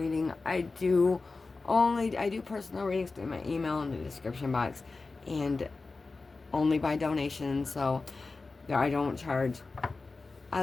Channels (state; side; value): quieter; right; 3.8 dB